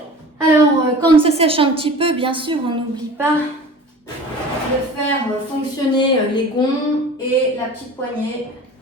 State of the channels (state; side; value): normal; both; correlation 0.40